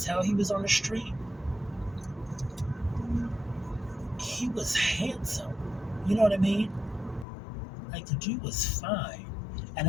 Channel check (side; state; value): right; drops out; at 7.2 s